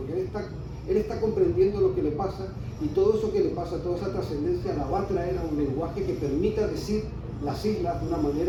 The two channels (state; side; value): identical; both; correlation 1.00